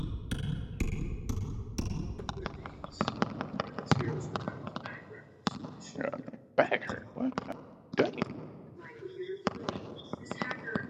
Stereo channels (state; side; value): identical; both; correlation 1.00